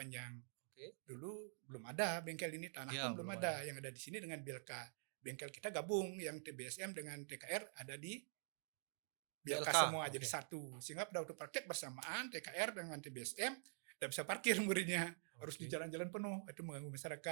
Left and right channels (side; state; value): left; silent; digital silence